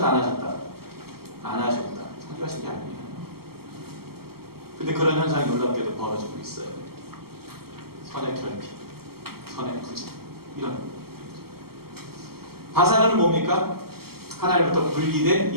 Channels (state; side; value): late; left; 0.95 ms